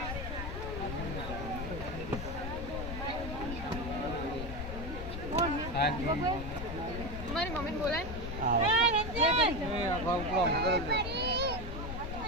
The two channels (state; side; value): noise; left; rumble, 6 dB below the sound